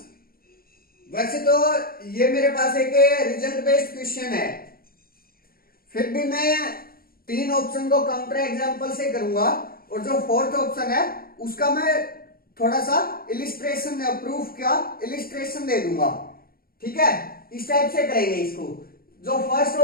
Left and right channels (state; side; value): late; right; 0.43 ms